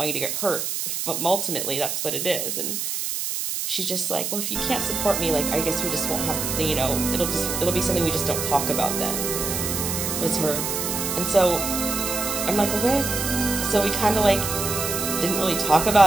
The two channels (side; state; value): right; noise; hiss, 2 dB below the sound